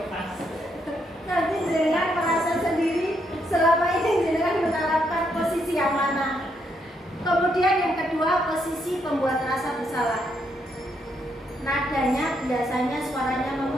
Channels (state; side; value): normal; both; correlation 0.76